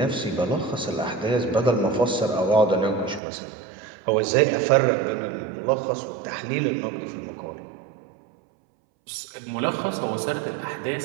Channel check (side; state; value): left; drops out; at 3.2 s